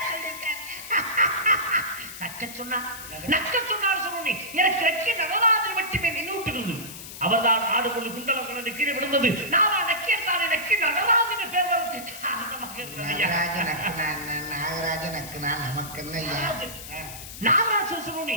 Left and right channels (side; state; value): left; noise; hiss, 12 dB below the sound